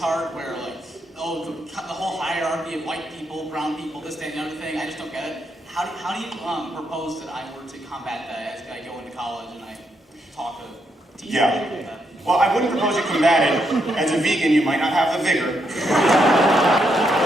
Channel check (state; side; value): normal; both; correlation 0.79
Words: where, like, oh, the whole hierarchy of white people, brown people, this, that, and the other thing. I just don't get it. How do you propose that I were to combat that as I go into college and I talk to teachers? Yeah. Well, I wouldn't propose you combat it. As a vegan, you might not have the vigor.